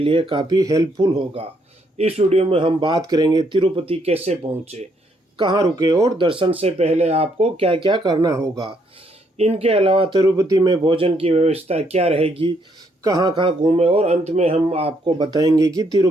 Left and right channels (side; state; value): both; normal; correlation 0.72